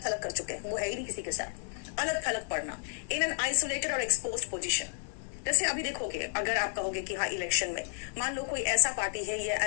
थलग कर चुके हैं, वो है ही नहीं किसी के साथ. अलग थलग पड़ना, इन एन आइसोलेटेड और एक्सपोज्ड पोजीशन. जैसे अभी देखोगे, अगर आप कहोगे कि हाँ इलेक्शन में मान लो कोई ऐसा पार्टी है या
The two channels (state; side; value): silent; right; 57 dB below the other